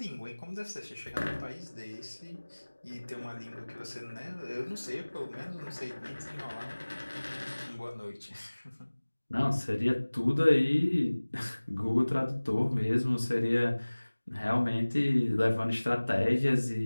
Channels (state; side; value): inverted; both; correlation -1.00